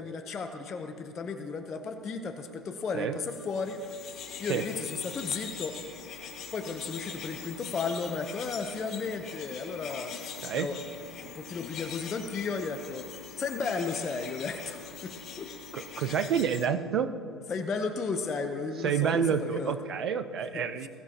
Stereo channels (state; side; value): normal; both; correlation 0.47